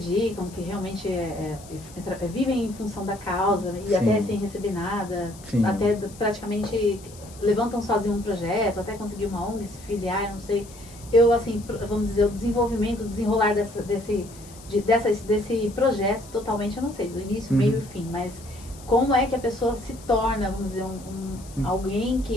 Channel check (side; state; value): left; noise; hiss, 20 dB below the sound